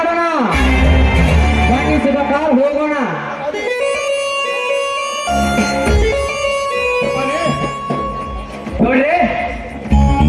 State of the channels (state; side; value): identical; both; correlation 1.00